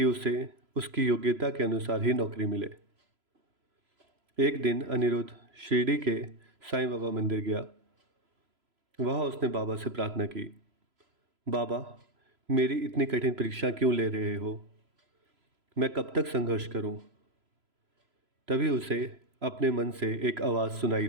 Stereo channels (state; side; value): late; left; 3.0 ms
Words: उसे उसकी योग्यता के अनुसार ही नौकरी मिले। एक दिन अनिरुद्ध शिरडी के साईं बाबा मंदिर गया। वहाँ उसने बाबा से प्रार्थना की, बाबा, मेरी इतनी कठिन परीक्षा क्यों ले रहे हो? मैं कब तक संघर्ष करूं? तभी उसे अपने मन से एक आवाज़ सुनाई